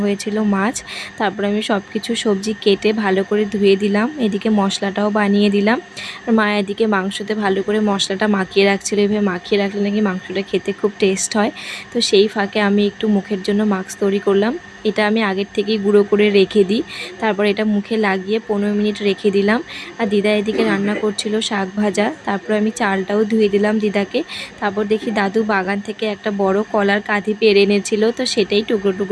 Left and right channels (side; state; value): both; identical; correlation 1.00